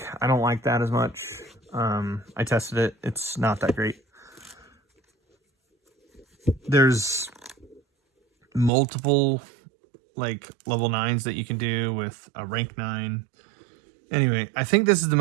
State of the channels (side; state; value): left; drops out; at 8.7 s